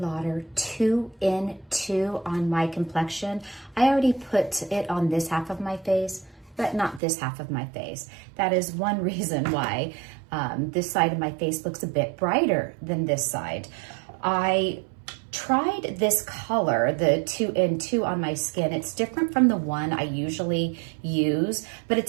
2 in 2 on my complexion. I already put it on this half of my face, but not this half of my face. That is one reason why this side of my face looks a bit brighter than this side. I tried this color, the 2 in 2 on my skin. It's different from the one I usually use, but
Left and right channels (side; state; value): left; drops out; at 7.0 s